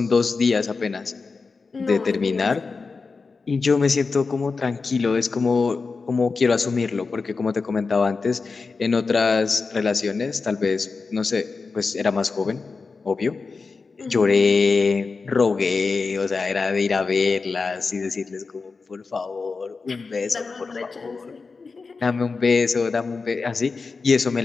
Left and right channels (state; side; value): quieter; right; 4.4 dB